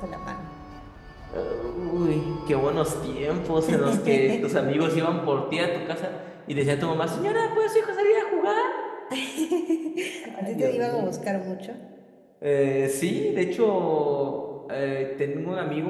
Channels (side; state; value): both; identical; correlation 1.00